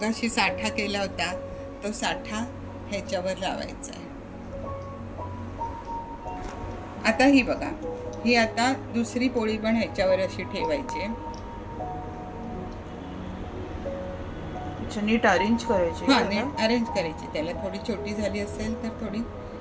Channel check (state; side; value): identical; both; correlation 1.00